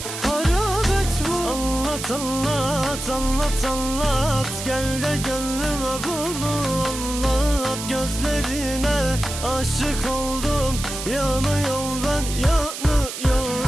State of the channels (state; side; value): noise; right; hiss, 8 dB below the sound